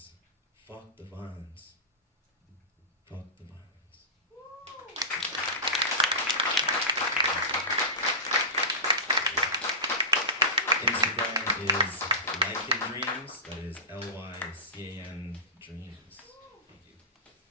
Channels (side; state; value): both; normal; correlation -0.19